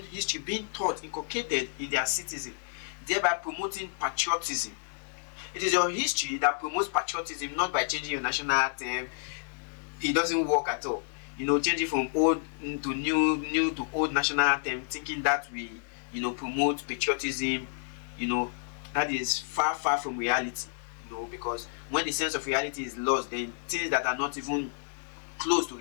history being taught, inculcated in their citizens, thereby promoting patriotism. It is your history that promotes patriotism, not by changing your national anthem. It doesn't work at all. Changing from old to new to old national anthem, thinking that will, promote patriotism, that is far from reality. Because when the sense of reality is lost, then things that are not even close to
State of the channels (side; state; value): right; silent; digital silence